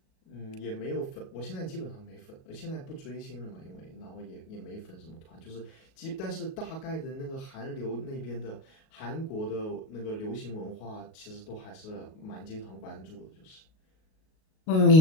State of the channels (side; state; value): right; late; 38 ms